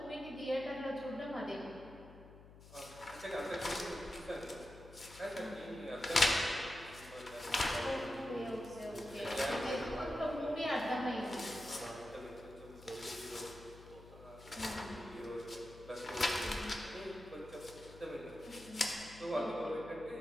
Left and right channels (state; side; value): noise; left; hum, 18 dB below the sound